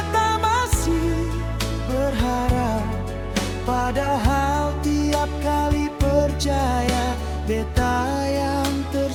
masih berharap. Padahal tiap kali percaya, beta yang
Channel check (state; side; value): identical; both; correlation 1.00